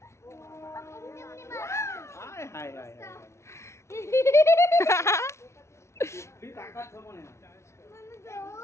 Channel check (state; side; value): late; right; 0.13 ms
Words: હાય હાય હાય ફી તાકાત છે મને